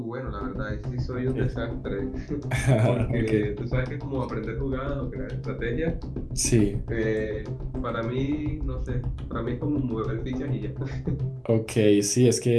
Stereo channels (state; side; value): identical; both; correlation 1.00